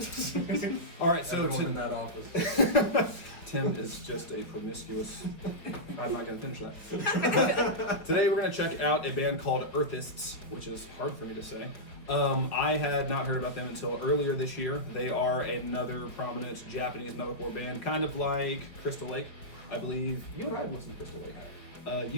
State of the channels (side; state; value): right; late; 4.8 ms